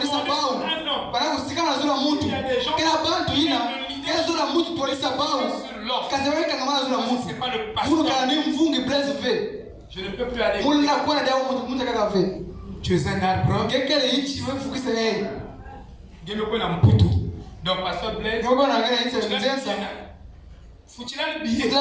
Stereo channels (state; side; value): identical; both; correlation 1.00